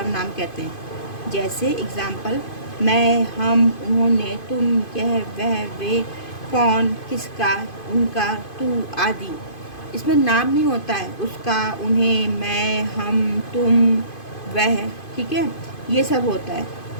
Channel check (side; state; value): right; late; 2.5 ms